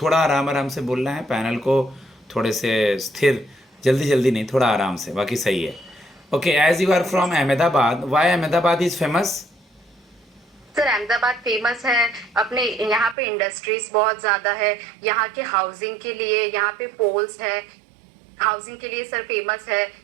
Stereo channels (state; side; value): drops out; left; at 13.2 s